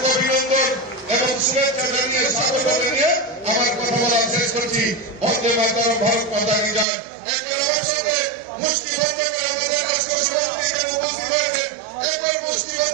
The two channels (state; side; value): drops out; left; at 6.9 s